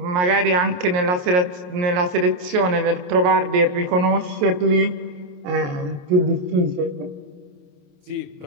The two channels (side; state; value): left; late; 28 ms